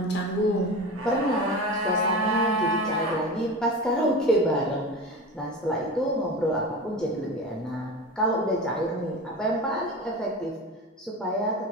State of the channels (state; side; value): normal; both; correlation 0.29